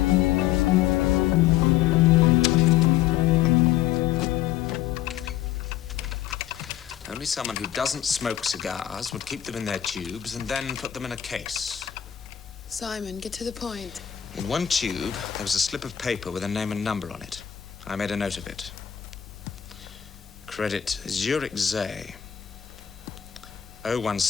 Only someone who doesn't smoke cigars would keep them in their tubes and then put them in a case. Simon, get to the point. In one tube, there was a slip of paper with a name and number on it. I made a note of it. Credit Zurich Zay.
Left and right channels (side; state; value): right; quieter; 10.9 dB